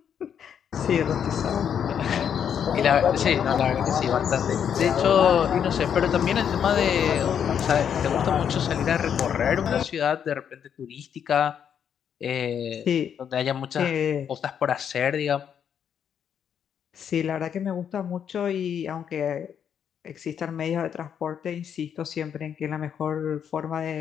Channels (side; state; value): right; quieter; 8.3 dB